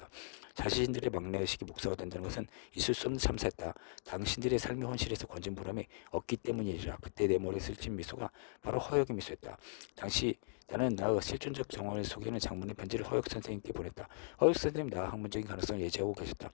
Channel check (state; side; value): silent; right; digital silence